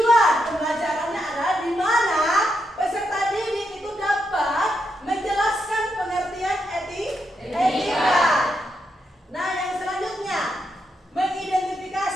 pembelajarannya adalah di mana peserta didik itu dapat menjelaskan pengertian etika. Nah, yang selanjutnya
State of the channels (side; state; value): both; normal; correlation 0.82